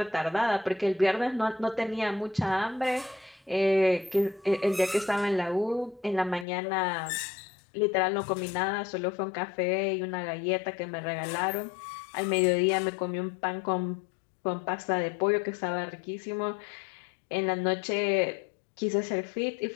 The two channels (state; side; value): drops out; right; at 6.5 s